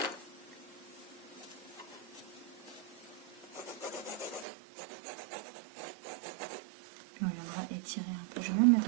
On viendra étirer un peu. Je vais même mettre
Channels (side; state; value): left; drops out; at 4.5 s